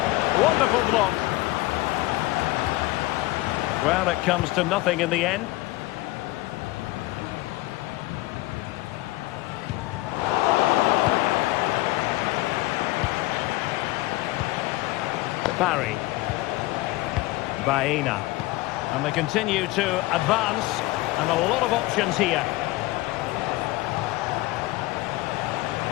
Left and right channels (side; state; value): right; quieter; 19.4 dB